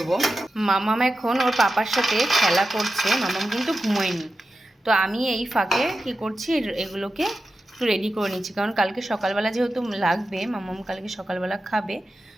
মামাম এখন ওর পাপার সাথে খেলা করছে, মামাম কিন্তু ঘুমোয়নি। তো আমি এই ফাঁকে কি করছি, এগুলোকে একটু রেডি করে নিচ্ছি, কারণ কালকে সকালবেলা যেহেতু লাগবে, মামাম কালকে সকালবেলা খাবে।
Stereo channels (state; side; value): normal; both; correlation 0.91